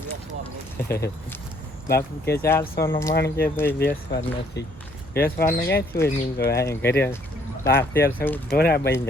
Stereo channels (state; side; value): normal; both; correlation 0.65